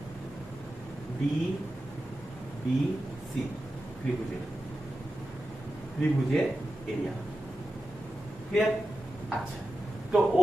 ডিবিসি ত্রিভুজের এরিয়া। ক্লিয়ার? আচ্ছা, তো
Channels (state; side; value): normal; both; correlation 0.92